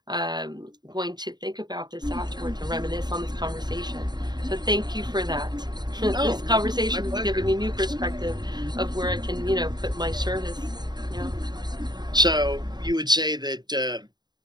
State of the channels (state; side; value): late; left; 0.20 ms